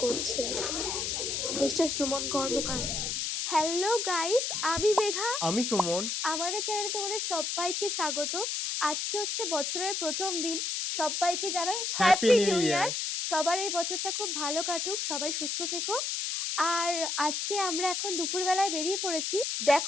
করছে মিস্টার সুমন কর্মকার। হ্যালো গাইস, আমি মেঘা, আমি সুমন। আমাদের চ্যানেলে তোমাদের সবাইকে স্বাগত। আজকে হচ্ছে বছরের প্রথম দিন, সবাইকে জানাই হ্যাপি নিউ ইয়ার। সবার এই বছরটা খুব ভালো কাটুক, সবাই সুস্থ থেকো। আর আজকে আমরা এখন দুপুরবেলায় বেরিয়ে পড়েছি।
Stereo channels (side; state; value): left; noise; hiss, 1 dB below the sound